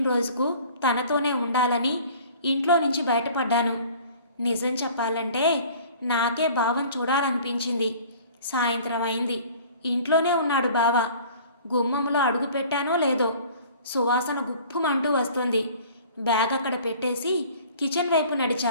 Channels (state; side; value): inverted; both; correlation -0.48